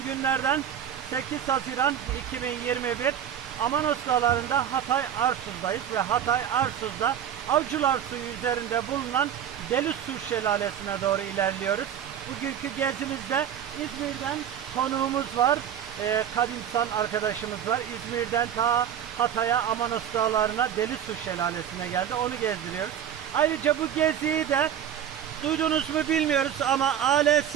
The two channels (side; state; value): left; quieter; 9.6 dB